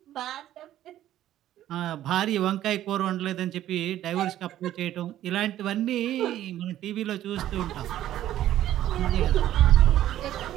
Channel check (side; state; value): left; quieter; 12.7 dB